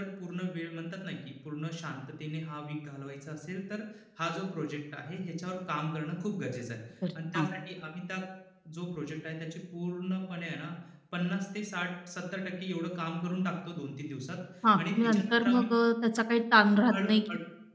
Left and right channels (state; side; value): identical; both; correlation 1.00